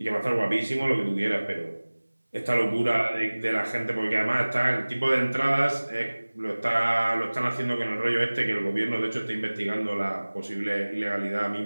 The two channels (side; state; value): both; inverted; correlation -1.00